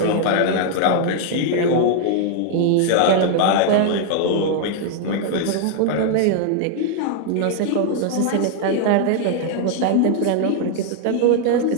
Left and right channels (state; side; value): different; both; correlation 0.00